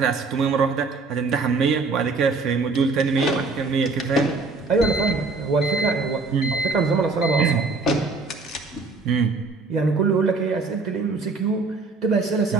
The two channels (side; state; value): left; quieter; 4.0 dB